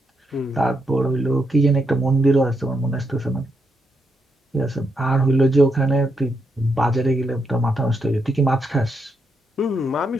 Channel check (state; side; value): normal; both; correlation 0.81